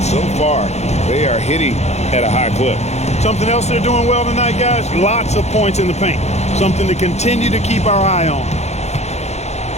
so far they are hitting at a high clip. Something else they're doing well tonight, guys, lots of points in the paint. Something to continue to keep our eye on.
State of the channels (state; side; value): late; right; 0.32 ms